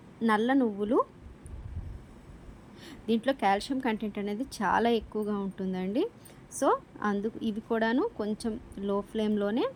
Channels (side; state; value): both; identical; correlation 1.00